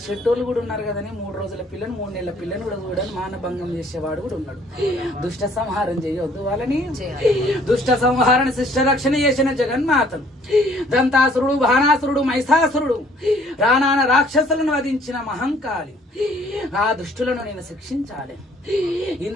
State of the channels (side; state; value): both; normal; correlation 0.59